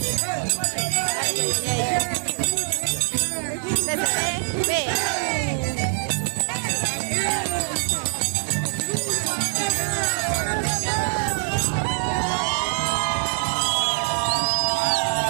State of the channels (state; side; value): silent; left; 63 dB below the other